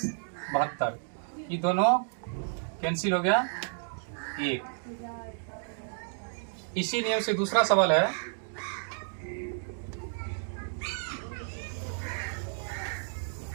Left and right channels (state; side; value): silent; left; digital silence